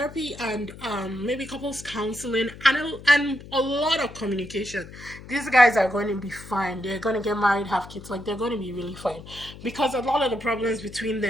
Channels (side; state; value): left; noise; hum, 16 dB below the sound